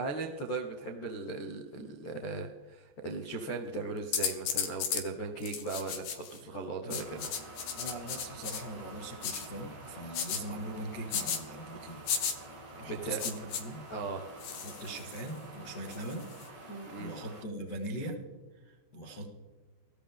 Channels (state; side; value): late; right; 14 ms